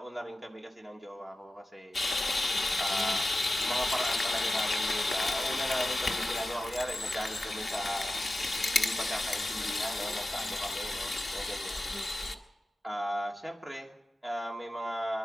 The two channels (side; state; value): both; normal; correlation 0.94